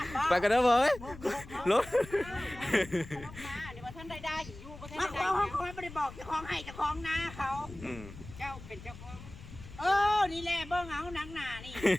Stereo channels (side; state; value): left; noise; rumble, 15 dB below the sound